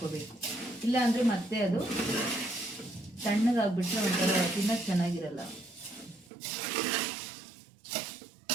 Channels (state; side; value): drops out; left; at 6.3 s